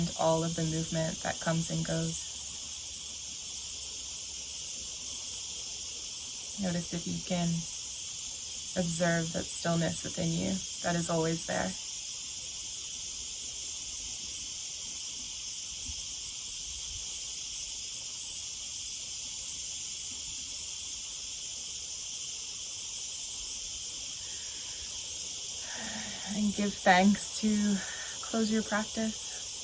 all of the movement that comes and goes. Notice if you can observe that stillness within you that is always there. And give thanks to close your practice.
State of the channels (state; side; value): identical; both; correlation 1.00